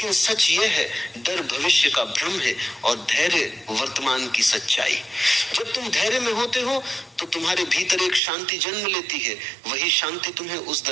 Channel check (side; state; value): left; drops out; at 8.2 s